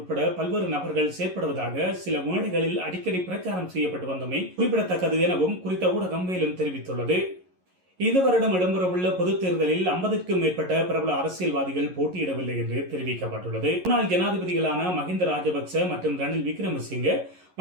பல்வேறு நபர்கள் செயற்படுவதாக சில மேடைகளில் அடிக்கடி பிரச்சாரம் செய்யப்பட்டு வந்தமை குறிப்பிடத்தக்கது எனவும் குறித்த ஊடகம் மேலும் தெரிவித்துள்ளது. இந்த வருடம் இடம்பெறவுள்ள பொதுத் தேர்தலில் 50க்கும் மேற்பட்ட பிரபல அரசியல்வாதிகள் போட்டியிடவில்லை என்று தெரிவிக்கப்பட்டுள்ளது. முன்னாள் ஜனாதிபதிகளான மஹிந்த ராஜபக்ச மற்றும் ரணில் விக்ரமசிங்கே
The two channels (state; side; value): late; left; 11 ms